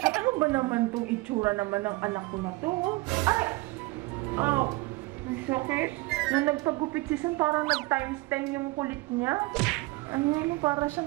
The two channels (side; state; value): left; quieter; 22.5 dB